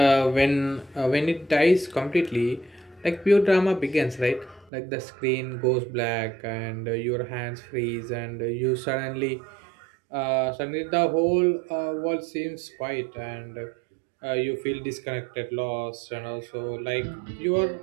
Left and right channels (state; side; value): drops out; left; at 4.7 s